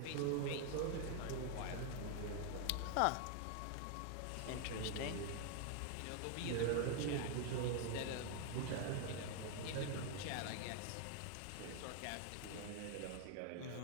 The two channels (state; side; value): different; both; correlation 0.00